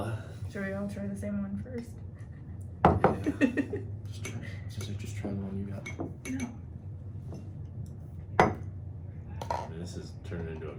Should we all try the same one first? Yeah. Just try the one you got. This is turning into a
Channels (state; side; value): identical; both; correlation 1.00